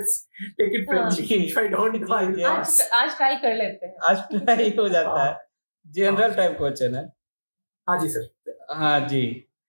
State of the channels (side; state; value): both; inverted; correlation -1.00